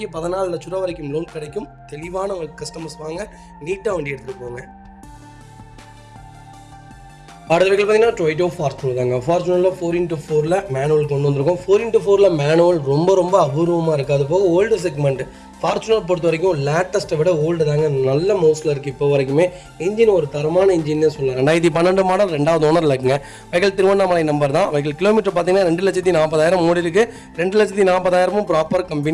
14 லட்ச ரூபா வரைக்கும் லோன் கிடைக்கும். தெளிவான கஸ்டமர்ஸ் வாங்க, நீட்டாக வண்டி எடுத்துகிட்டு போங்க. அடுத்த வெஹிக்கிள் பார்த்தீங்கன்னா டொயோட்டோ ஃபார்ச்சுனர் தாங்க. ஃபார்ச்சுனரில் 4x4 மேனுவல் கொண்டு வந்திருக்கோம். 4x4 மேனுவல் ரொம்ப ரொம்ப அபூர்வமாக இருக்குது. அது போக ஓல்டு செக்மெண்ட். ஃபார்ச்சுனர் பொறுத்த வரைக்கும் லேட்டஸ்ட்டை விட ஓல்டு தாங்க நல்ல மோஸ்ட்டில் இருக்குது. இப்போ வரைக்குமே இன்ஜின் ஒரு தரமான இன்ஜின்னே சொல்லலாம். 2012 மாடல், 2வது ஓனரில் இருக்குங்க. வெஹிக்கிள் திருவண்ணாமலை நம்பர் தான். வெஹிக்கிள் கிலோமீட்டர் பார்த்தீங்கன்னா 2,40,000 ஓடி இருக்குது. 2,40,000 ப்ராப்பர்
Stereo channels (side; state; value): both; identical; correlation 1.00